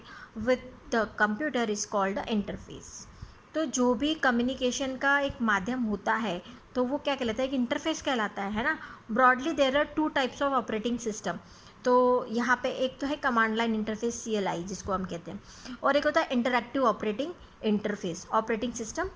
with the computer is called the interface. तो जो भी कम्युनिकेशन का एक माध्यम होता है तो वो क्या कहलाता है? एक इंटरफेस कहलाता है ना। Broadly there are 2 types of operating system. तो यहाँ पे एक तो है कमांड लाइन इंटरफेस, CLI जिसको हम कहते हैं, और एक होता है interactive operating interface, operating system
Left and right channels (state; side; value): identical; both; correlation 1.00